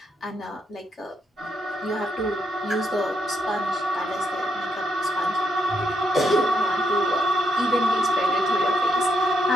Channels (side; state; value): both; normal; correlation 0.77